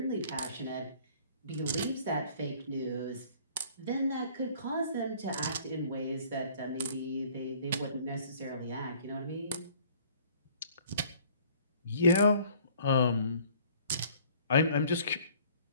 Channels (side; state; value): both; inverted; correlation -0.54